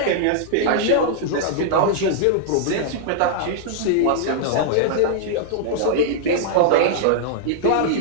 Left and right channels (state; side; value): different; both; correlation -0.01